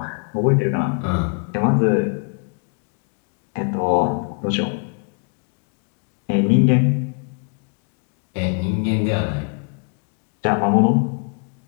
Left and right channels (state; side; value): quieter; right; 38.7 dB